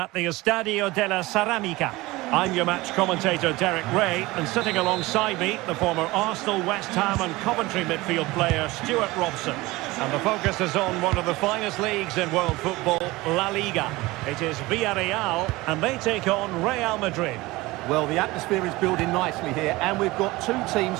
the Estadio de la Ceramica. I'm your match commentator Derek Ray, and sitting alongside me, the former Arsenal, West Ham and Coventry midfield player Stuart Robson. And the focus is on one of the finest leagues in world football, La Liga. It is Villarreal, and they take on Real Madrid. Well, the atmosphere is building nicely here, and we've got two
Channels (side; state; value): left; quieter; 20.5 dB